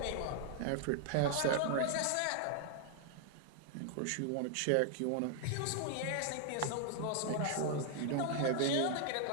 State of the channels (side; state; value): both; different; correlation 0.00